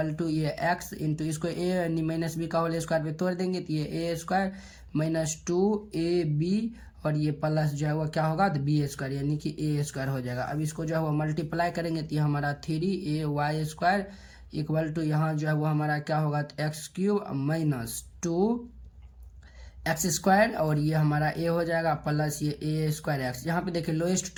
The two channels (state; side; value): identical; both; correlation 1.00